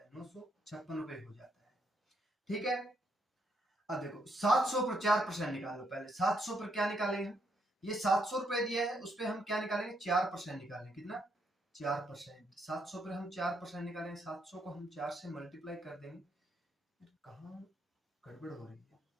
है, 956 रुपए हो जाता है। ठीक है, अब देखो 700 पर 4% निकालो। पहले 700 पर क्या निकालेंगे, ये 700 रुपए दिया है, उस पर हम क्या निकालेंगे, 4% निकालेंगे। कितना, 4%। 700 पर हम 4% निकालेंगे, 700 को हम 4 से मल्टीप्लाई कर देंगे। कहाँ गड़बड़ हो रही है,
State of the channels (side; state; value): both; normal; correlation 0.75